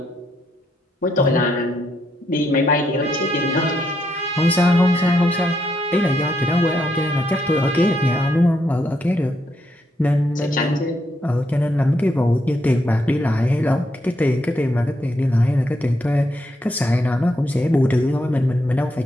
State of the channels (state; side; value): normal; both; correlation 0.78